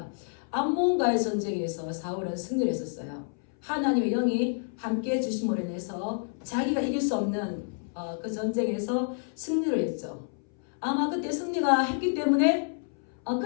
암몬과의 전쟁에서 사울은 승리를 했었어요. 하나님의 영이 함께 주심으로 인해서 자기가 이길 수 없는 그 전쟁에서 승리를 했죠. 아마 그때 승리가 했기 때문에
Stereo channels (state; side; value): silent; right; 59 dB below the other